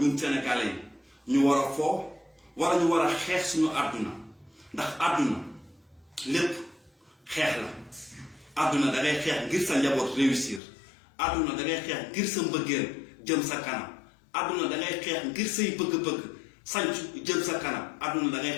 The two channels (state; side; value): drops out; right; at 10.6 s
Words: sénégalais yi ñu war a foo wala ñu war a xeex suñu àdduna ndax àdduna lépp xeex la àdduna da ngay xeex ngir sa njaboot réussir àdduna da ngay xeex ngir sa mbëggeel jëm sa kanam àdduna da ngay xeex ngir say bëgg-bëgg sancu jëm sa kanam àdduna da